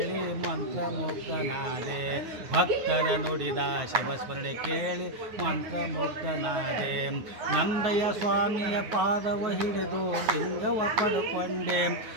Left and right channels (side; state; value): left; late; 9.4 ms